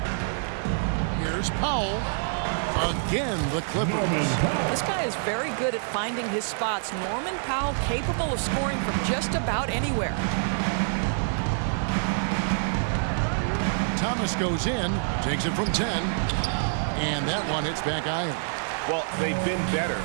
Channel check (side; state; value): left; silent; 60 dB below the other